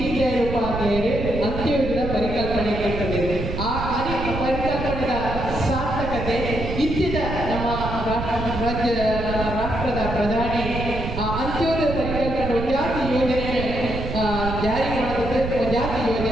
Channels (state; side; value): noise; right; rumble, 5 dB below the sound